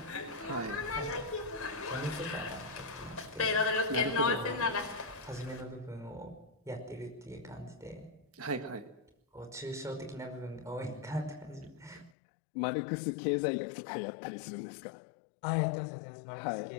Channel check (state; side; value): drops out; right; at 12.2 s